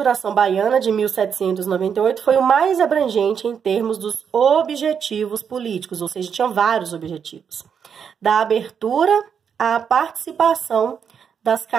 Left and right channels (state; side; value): quieter; left; 7.2 dB